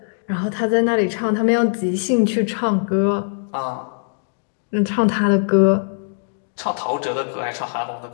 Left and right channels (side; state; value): right; silent; digital silence